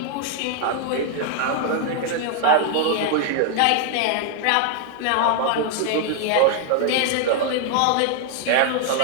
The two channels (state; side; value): different; both; correlation 0.00